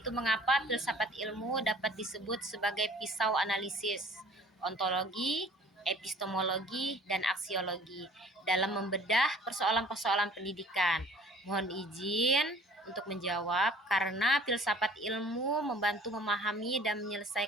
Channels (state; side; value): normal; both; correlation 0.50